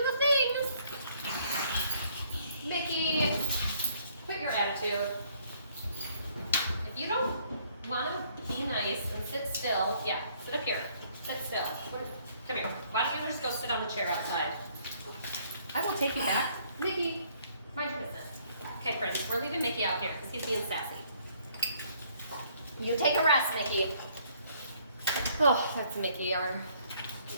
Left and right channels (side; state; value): both; inverted; correlation -0.64